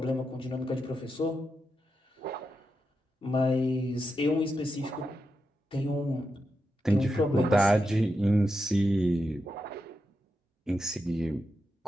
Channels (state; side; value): normal; both; correlation 0.87